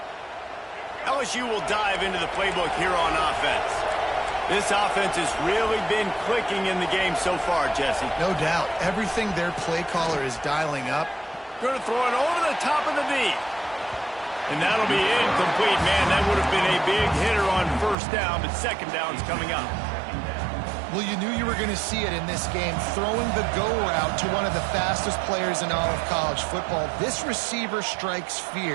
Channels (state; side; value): drops out; left; at 17.9 s